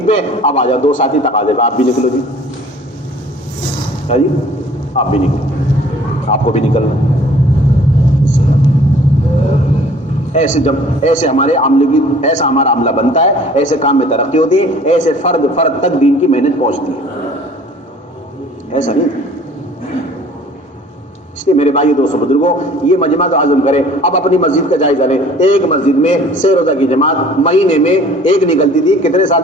پہ، اب آ جاؤ 2 ساتھی تقاضے پہ. آپ بھی نکلو جی، کیا جی؟ آپ بھی نکلو، آپ کو بھی نکلنا. ایسے ہمارے عملے کی ایسا ہمارا عملہ بنتا ہے، ایسے کام میں ترقی ہوتی ہے، ایسے فرد تک دین کی محنت پہنچتی ہے. ایسا نہیں تھا. اس لیے میرے بھائی دوستوں بزرگوں یہ مجمع تو عزم کرے. اب اپنی مسجد کا جائزہ لیں. ایک مسجد میں 6 روزہ کی جماعت مہینے میں ایک نکلتی تھی. کتنے سال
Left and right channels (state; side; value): normal; both; correlation 0.51